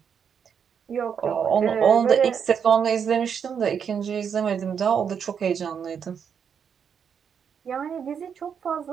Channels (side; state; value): left; quieter; 7.3 dB